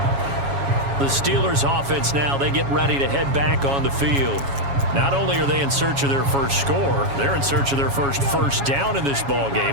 The Steelers offense now, they get ready to head back on the field. Not only are they in search of their first score, they're in search of their first down in this ball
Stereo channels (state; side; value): late; left; 7.2 ms